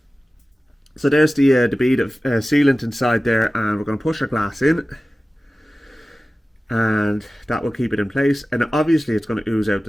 so there's the bead of sealant inside there, and we're going to push our glass in, and that will keep it in place. And obviously it's going to ooze out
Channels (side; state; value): both; normal; correlation 0.96